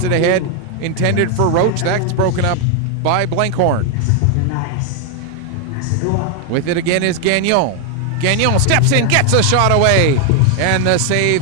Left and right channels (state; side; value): different; both; correlation 0.01